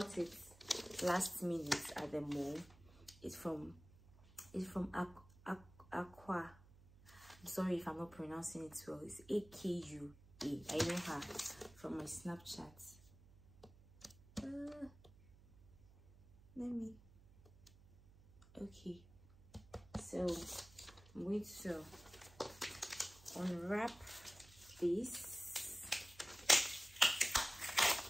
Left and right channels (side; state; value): right; noise; hum, 23 dB below the sound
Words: it last minute at the mall. It's from Accra. I'm sorry if I'm not pronouncing it well. It's AKUA. I know her from my Snapchat. Okay, so I'm going to unwrap this.